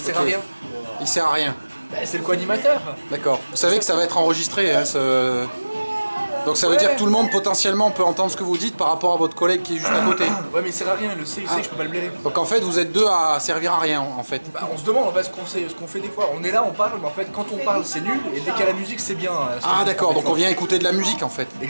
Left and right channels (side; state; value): both; inverted; correlation -1.00